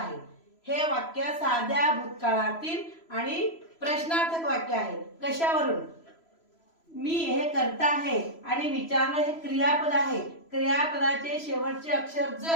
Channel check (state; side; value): late; right; 3.0 ms